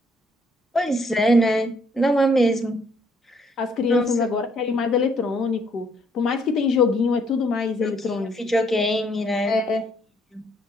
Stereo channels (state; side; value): normal; both; correlation 0.68